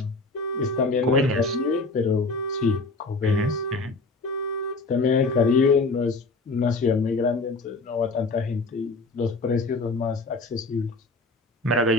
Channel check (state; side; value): quieter; right; 3.4 dB